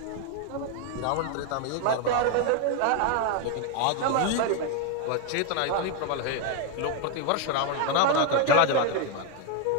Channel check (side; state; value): both; different; correlation 0.01